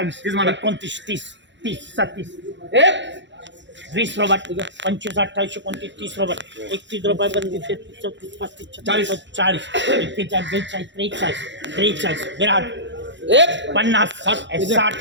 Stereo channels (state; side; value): late; left; 0.53 ms